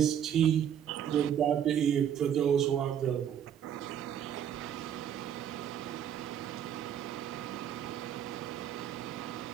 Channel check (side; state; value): left; quieter; 9.4 dB